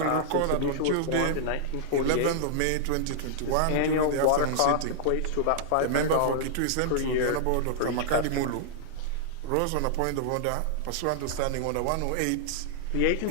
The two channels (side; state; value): both; different; correlation -0.01